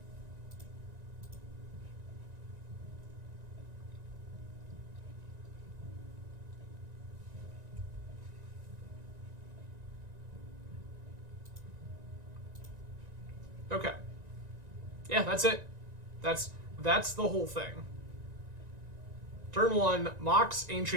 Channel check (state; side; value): late; left; 1.9 ms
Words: Okay. Yeah, that's it. That's the whole thing. Turn 1, Mox,